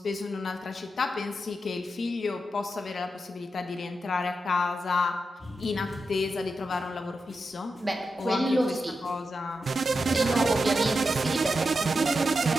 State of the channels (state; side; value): normal; both; correlation 0.88